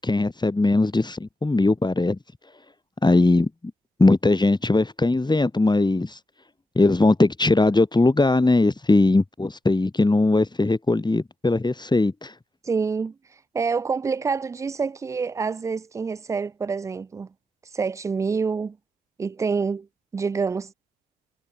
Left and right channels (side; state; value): both; normal; correlation 0.88